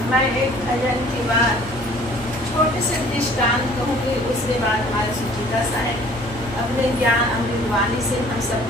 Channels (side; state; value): both; normal; correlation 0.53